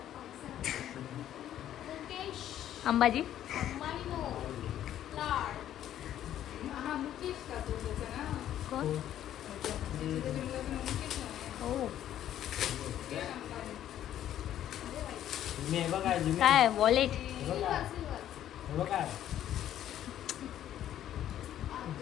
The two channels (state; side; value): quieter; right; 11.5 dB